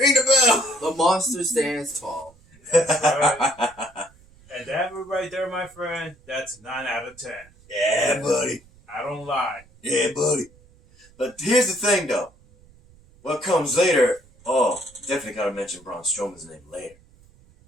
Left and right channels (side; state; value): right; noise; rumble, 27 dB below the sound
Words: the bell. The monster stands tall. Right. And that right there, my friend, that's 9 out of 10. Yeah, buddy. I don't lie. Yeah, buddy. But here's the thing, though. What comes later, definitely gotta mention Braun Strowman's name later.